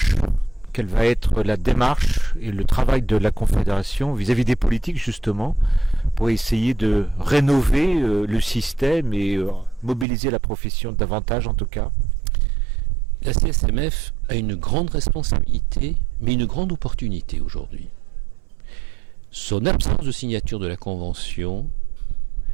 Quelle va être la démarche et le travail de la Confédération vis-à-vis des politiques, justement, pour essayer de rénover le système et mobiliser la profession davantage, en tout cas ? La CSMF a une grande responsabilité, mais une grande opportunité aujourd'hui. Son absence de signature de la Convention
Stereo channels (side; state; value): left; drops out; at 10.1 s